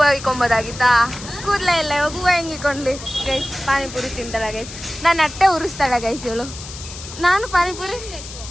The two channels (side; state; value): left; noise; hiss, 13 dB below the sound